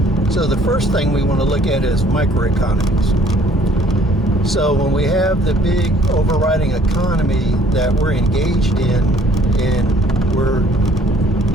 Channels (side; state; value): both; normal; correlation 0.58